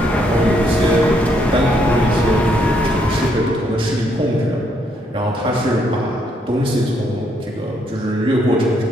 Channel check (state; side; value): normal; both; correlation 0.73